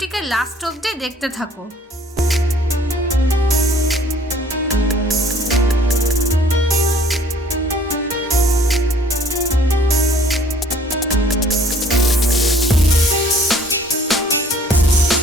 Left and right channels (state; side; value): normal; both; correlation 0.56